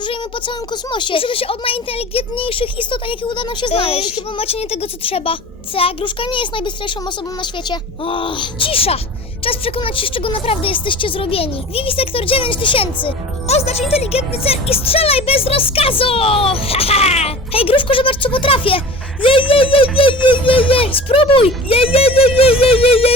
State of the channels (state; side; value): normal; both; correlation 0.38